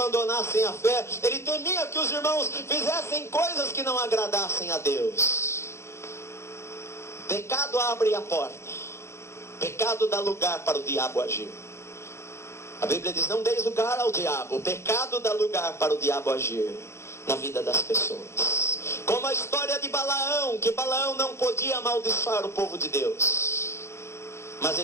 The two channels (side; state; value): right; late; 0.13 ms